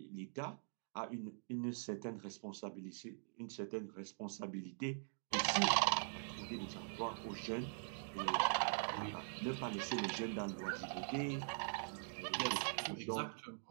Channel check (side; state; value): left; silent; digital silence